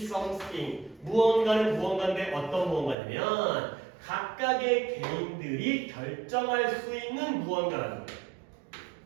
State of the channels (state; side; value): drops out; left; at 3.0 s